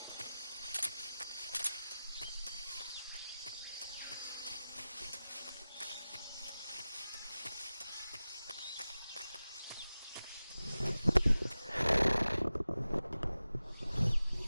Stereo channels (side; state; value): both; inverted; correlation -0.95